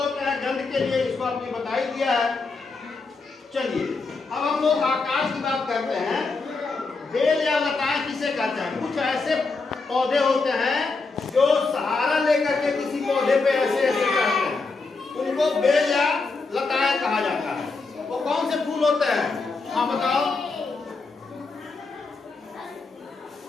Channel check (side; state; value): right; quieter; 4.0 dB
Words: हैं गंध के लिए, इसको आपने बता ही दिया है। चलिए, अब हम लोग आकाश की बात करते हैं। बेल या लताएं किसे कहते हैं? कुछ ऐसे पौधे होते हैं जो सहारा लेकर के किसी पौधे पे ऐसे ऐसे करते हैं, उनको बेल या लताएं कहा जाता है। वो कौन से फूल होते हैं? हाँ बताओ।